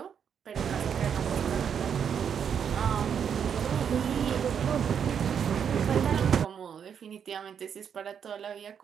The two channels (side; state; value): left; quieter; 7.7 dB